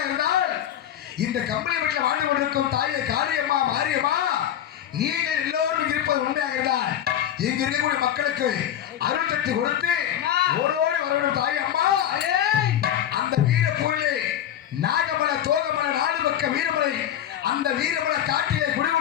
இருந்தால் இந்த கம்பளி வீட்டில் வாழ்ந்து கொண்டிருக்கும் தாயை காளியம்மா மாரியம்மா நீங்கள் எல்லோரும் இருப்பது உண்மையாக இருந்தால் இங்க இருக்கக்கூடிய மக்களுக்கு அருள் சக்தி கொடுத்து ஓரோடு வரணும் தாய் அம்மா. அந்த வீரப்பூரிலே நாகமல தோகமல நாடு பக்க வீரமலை அந்த வீரமல காட்டிலே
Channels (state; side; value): quieter; right; 10.8 dB